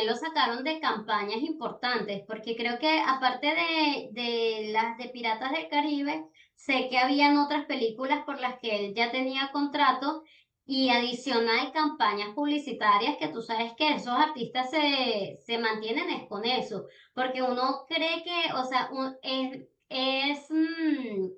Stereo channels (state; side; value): identical; both; correlation 1.00